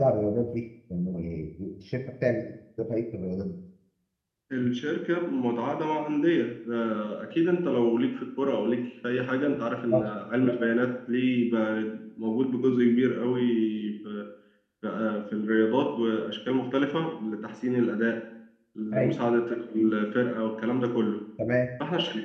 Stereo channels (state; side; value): identical; both; correlation 1.00